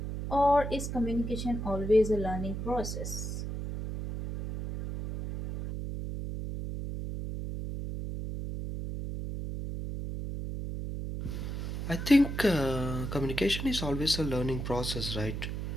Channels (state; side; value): noise; right; hum, 5 dB below the sound